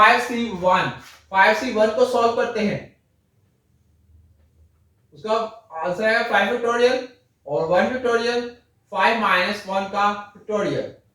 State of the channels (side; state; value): both; identical; correlation 1.00